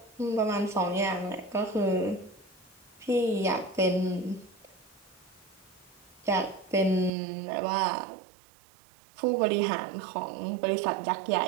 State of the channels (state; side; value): drops out; left; at 7.1 s